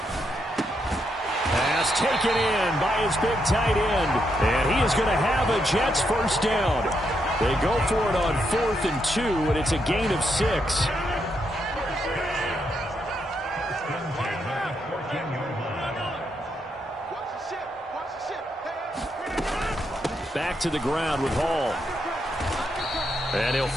Pass taken in by his big tight end. And he is going to have a Jets first down. They go for it on 4th and 2, and it's a gain of 6. Back to the ground with Hall. And he'll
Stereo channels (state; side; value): normal; both; correlation 0.80